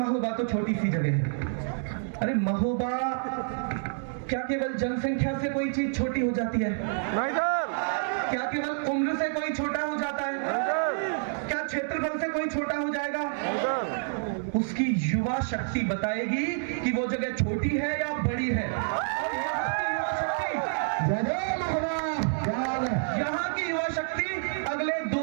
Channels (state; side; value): silent; left; 59 dB below the other